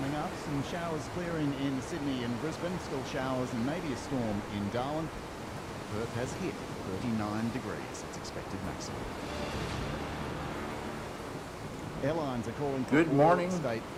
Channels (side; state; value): both; identical; correlation 1.00